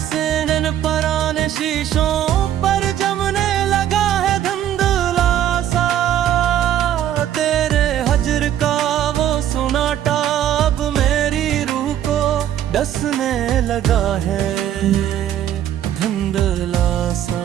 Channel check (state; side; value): quieter; left; 11.1 dB